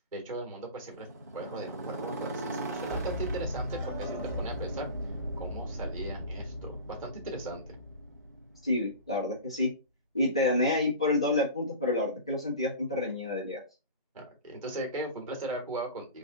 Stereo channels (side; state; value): both; inverted; correlation -0.33